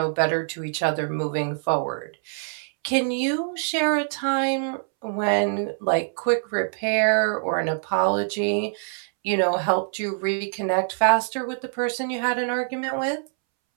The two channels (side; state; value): left; silent; 62 dB below the other